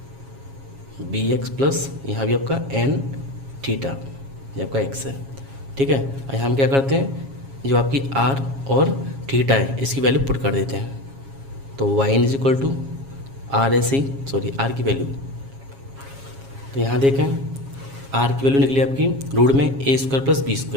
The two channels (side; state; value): left; late; 7.3 ms